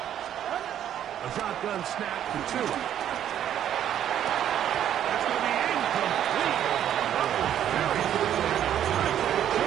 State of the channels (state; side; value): quieter; left; 10.4 dB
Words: A shotgun snap to Tua. That's going to be incomplete. Very